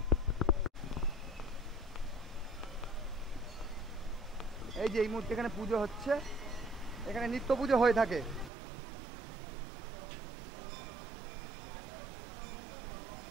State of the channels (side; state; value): left; drops out; at 8.5 s